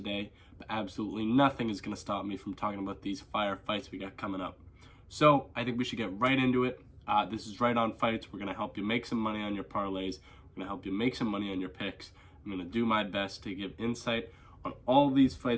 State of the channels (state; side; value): identical; both; correlation 1.00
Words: but absolutely nothing is going to stop me from talking about these fire fights we got coming up. So I think we should get right into it. This is Right On Fights. We're going to help you make some money on your parlays. We're going to help you make some money on your picks. I'm going to do my best to give insight on all these